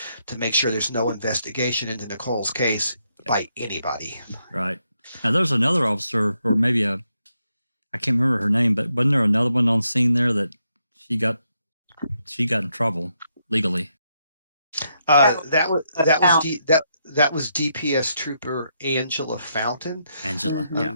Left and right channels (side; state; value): both; inverted; correlation -0.79